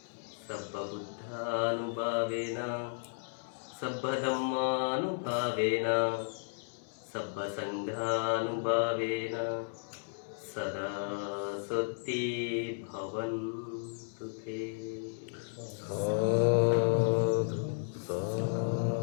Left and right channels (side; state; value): right; silent; digital silence